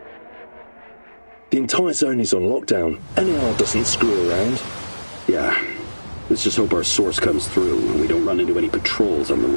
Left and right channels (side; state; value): both; inverted; correlation -1.00